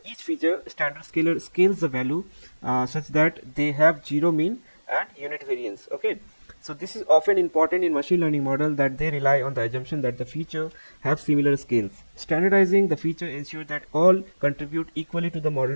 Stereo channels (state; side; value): inverted; both; correlation -1.00